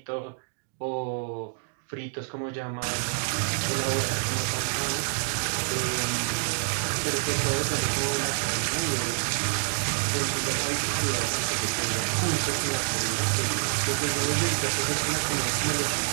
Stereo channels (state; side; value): silent; left; 60 dB below the other